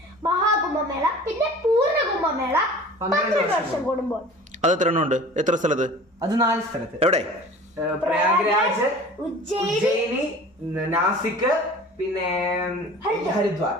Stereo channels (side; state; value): both; normal; correlation 0.42